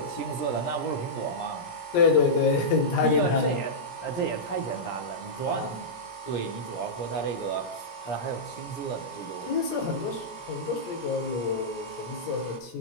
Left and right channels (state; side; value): late; right; 17 ms